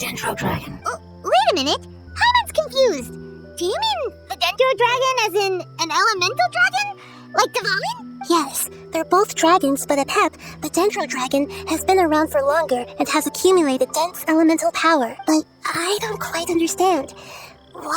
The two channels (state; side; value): identical; both; correlation 1.00